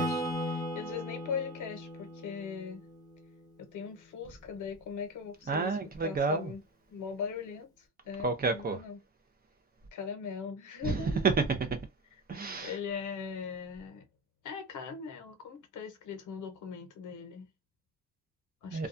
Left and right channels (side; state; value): both; normal; correlation 0.23